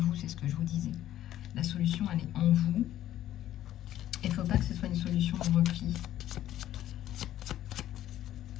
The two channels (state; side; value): quieter; right; 12.6 dB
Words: c'est ce que je vous disais. La solution, elle est en vous. Il ne faut pas que ce soit une solution de repli.